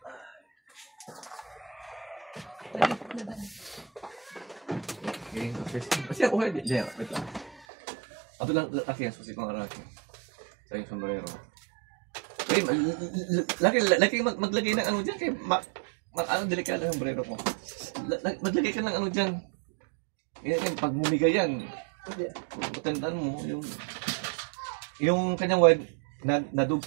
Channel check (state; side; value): drops out; left; at 7.7 s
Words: Kasi ako hindi. Diyan, wait lang. Ato lang kasi ang susi kong araki. Sa yung sombrero. Ay, laki maglagay ng ano dyan kay ano delikado yung sombrero ko. Maglagay ka ng ano dyan. Yan, pag bumigay yan, matandaan mo yung kanyang wire